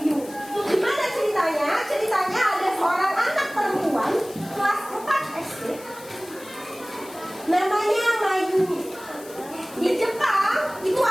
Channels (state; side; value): noise; left; hiss, 19 dB below the sound